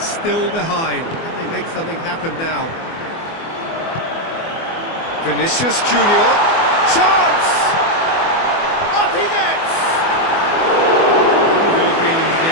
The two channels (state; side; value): late; right; 24 ms